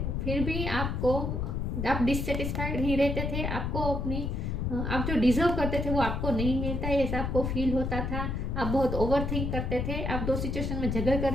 फिर भी आप डिससेटिस्फाइड ही रहते थे। आपको अपनी आप जो डिजर्व करते थे वो आपको नहीं मिलता है, ऐसा आपको फील होता था। आप बहुत ओवर थिंक करते थे, आप दो सिचुएशन में झगड़ कर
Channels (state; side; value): noise; left; rumble, 1 dB below the sound